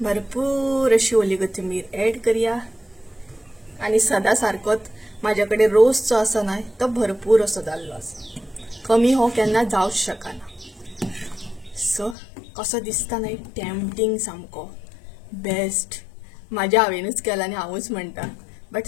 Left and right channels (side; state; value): right; drops out; at 12.2 s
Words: भरपूर अशी ओली कोथिंबीर ऍड करूया। आणि सदा सारकोच माझ्याकडे रोस जो आसा न्हय तो भरपूर असो जाल्लो आसा, कमी हो केन्ना जावंच शकना। सो कसो दिसता न्हय, टेम्पटिंग सामको बेस्ट। म्हाज्या हांवेनूच केला आनी हांवूच म्हणटा, बट